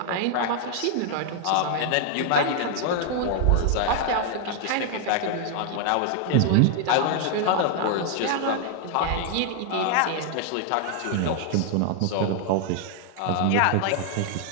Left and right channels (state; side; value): different; both; correlation 0.00